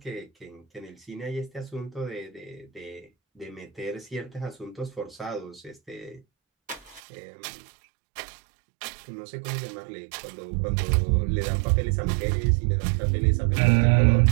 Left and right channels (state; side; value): drops out; left; at 7.0 s